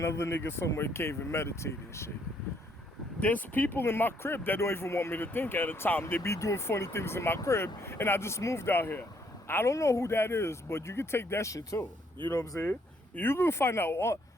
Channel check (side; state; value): both; normal; correlation 0.69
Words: nigga somewhere in cave and meditate and shit. There's people in my crib that don't even want me to think at a time. They be doing funny things in my crib and I just moved out here. I don't know who that is, but you can take that shit too. You know what I'm saying? You can find out.